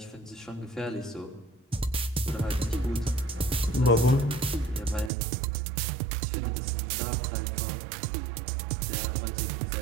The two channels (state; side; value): drops out; left; at 5.1 s